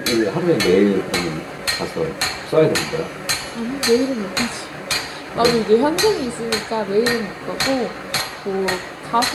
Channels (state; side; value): identical; both; correlation 1.00